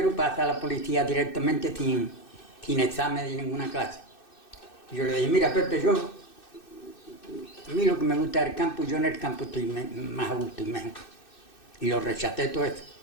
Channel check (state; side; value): late; right; 2.6 ms